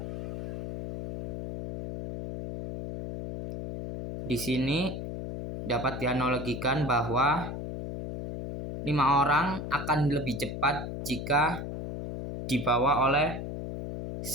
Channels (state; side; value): noise; left; hum, 6 dB below the sound